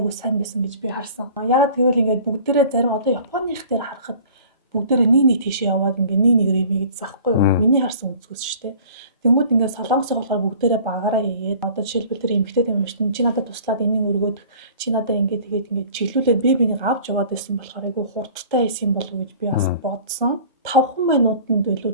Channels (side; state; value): both; inverted; correlation -0.47